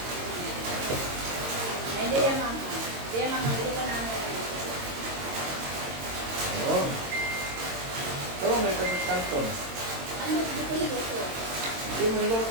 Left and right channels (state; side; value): late; left; 22 ms